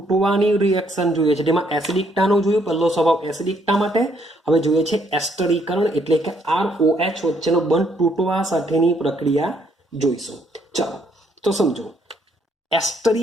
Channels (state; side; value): normal; both; correlation 0.69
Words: રિએક્શન જોઈએ છે, જેમાં એસિડિકતાનો જોયું, પહેલો સ્વભાવ એસિડિકતા માટે. હવે જોઈએ છે એસ્ટરીકરણ, એટલે કે ROH વચ્ચેનો બંધ તૂટવા સાથેની પ્રક્રિયા જોઈશું. ચાલો તો સમજો,